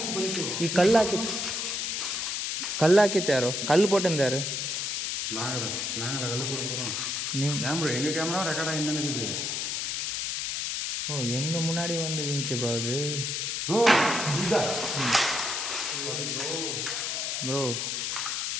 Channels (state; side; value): noise; left; hiss, 1 dB below the sound